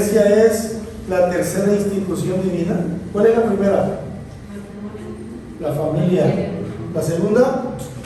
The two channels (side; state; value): both; identical; correlation 1.00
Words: es la tercera institución divina? ¿Cuál es la primera? La familia. La segunda,